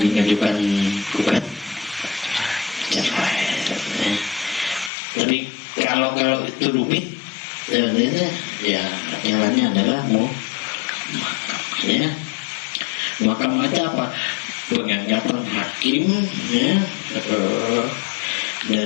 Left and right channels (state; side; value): drops out; right; at 4.9 s